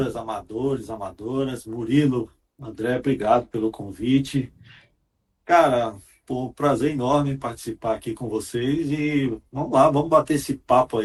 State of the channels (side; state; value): both; identical; correlation 1.00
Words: amadores, amadoras. Murilo, André, obrigado pelo convite. Cara, um prazer enorme participar aqui com vocês e vamos lá, vamos bater esse papo